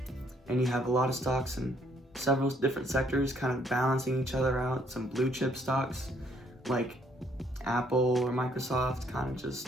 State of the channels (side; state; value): both; normal; correlation 0.67